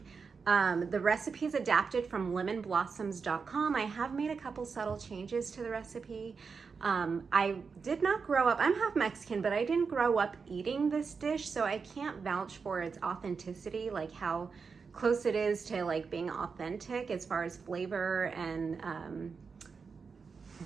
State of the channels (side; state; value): left; quieter; 5.3 dB